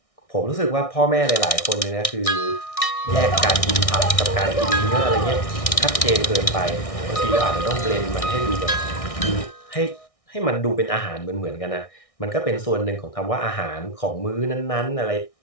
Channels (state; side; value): late; right; 1.6 ms